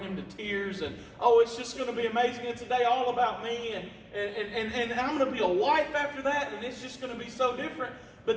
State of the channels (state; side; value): identical; both; correlation 1.00